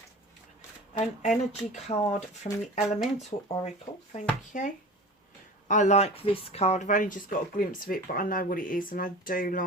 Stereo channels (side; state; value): both; normal; correlation 0.37